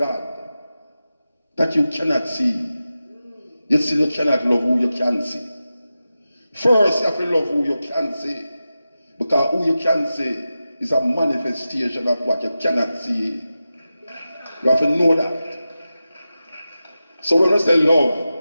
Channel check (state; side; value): inverted; both; correlation -0.93